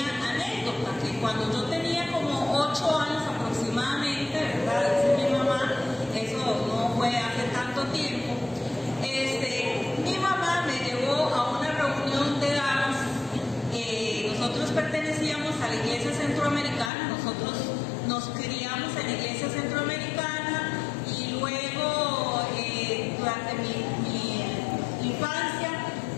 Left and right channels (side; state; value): right; drops out; at 16.9 s